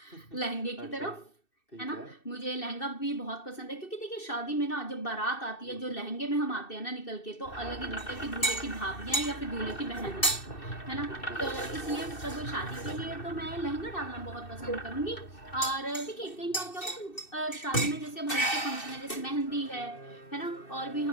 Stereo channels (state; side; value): late; right; 2.6 ms